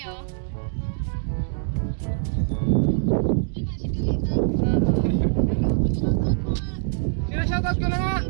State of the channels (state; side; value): silent; left; digital silence